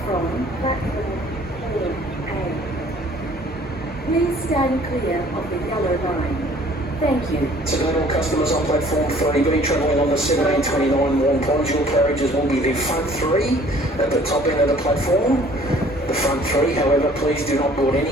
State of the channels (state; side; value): normal; both; correlation 0.54